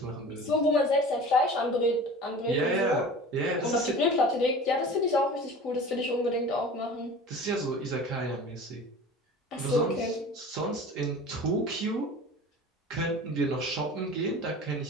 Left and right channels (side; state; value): both; normal; correlation 0.39